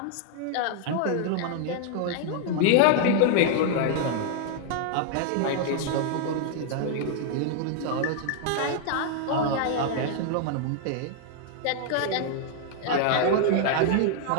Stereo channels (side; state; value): both; different; correlation 0.00